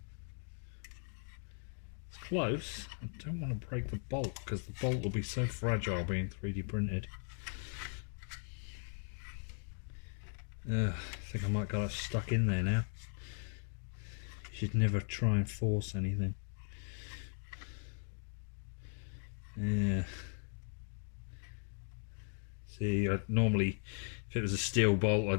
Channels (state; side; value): silent; right; 52 dB below the other